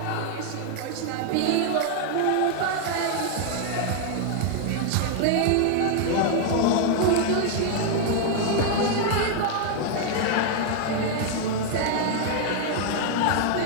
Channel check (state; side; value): different; both; correlation 0.00